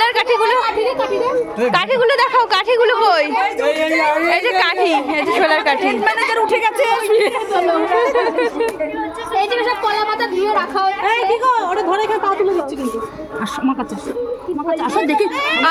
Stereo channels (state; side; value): identical; both; correlation 1.00